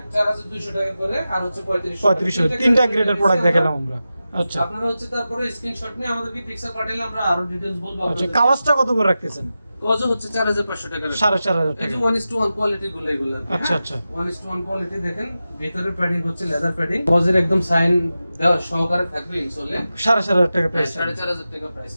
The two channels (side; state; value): both; inverted; correlation -0.93